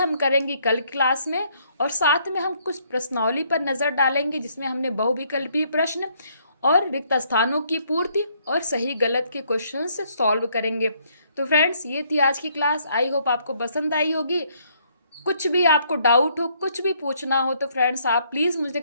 करेंगे कल क्लास में, और साथ में हम कुछ प्रश्नावली पर नज़र डालेंगे जिसमें हमने बहुविकल्पीय प्रश्न और रिक्त स्थानों की पूर्ति और सही गलत के क्वेश्चन से सॉल्व करेंगे। तो फ्रेंड्स, ये थी आज की क्लास। आई होप आपको पसंद आई होगी। कुछ भी आपको डाउट हो, कुछ भी पूछना हो तो फ्रेंड्स आप प्लीज़ मुझे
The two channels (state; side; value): inverted; both; correlation -0.68